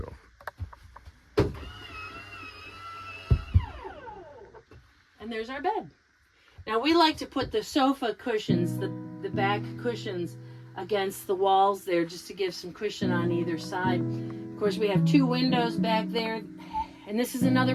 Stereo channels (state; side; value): identical; both; correlation 1.00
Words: And there's our bed. Now we like to put the sofa cushions, the back cushions, against the walls there just to give some cushion on either side. Of course, we have 2 windows back there, and this is another